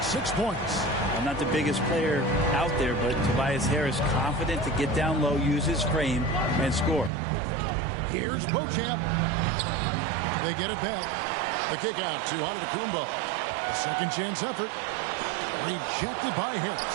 6 points. I'm not the biggest player out there, but Tobias Harris confident to get down low, use his frame, and score. Here's Beauchamp. They get it back. The kick out to Antetokounmpo. A second chance effort. Rejected by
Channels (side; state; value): left; drops out; at 7.1 s